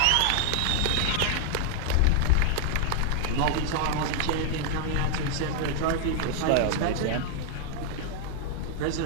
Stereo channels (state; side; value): different; both; correlation 0.00